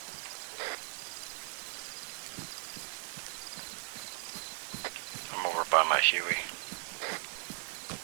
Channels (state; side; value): silent; left; 53 dB below the other